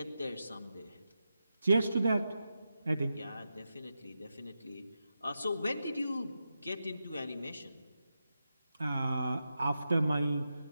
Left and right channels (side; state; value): both; inverted; correlation -0.89